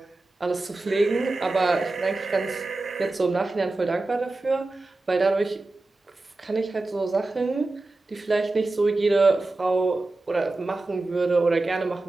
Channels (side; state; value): left; quieter; 3.1 dB